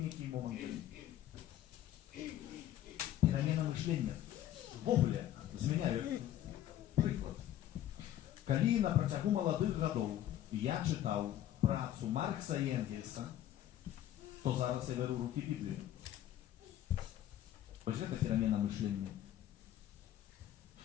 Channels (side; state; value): right; quieter; 12.2 dB